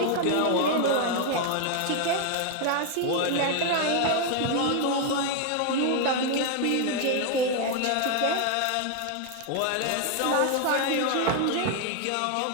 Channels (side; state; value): both; different; correlation 0.00